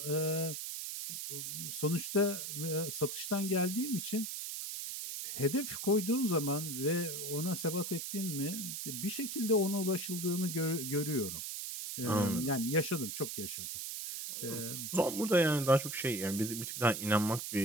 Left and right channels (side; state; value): right; noise; hiss, 5 dB below the sound